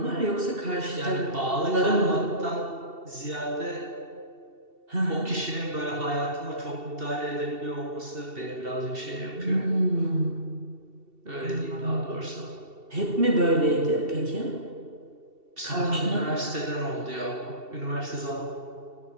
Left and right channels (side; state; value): left; late; 2.7 ms